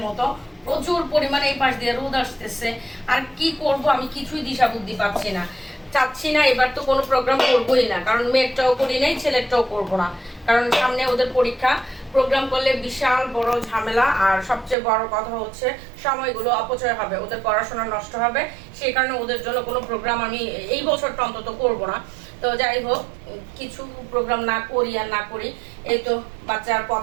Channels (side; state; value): left; drops out; at 14.8 s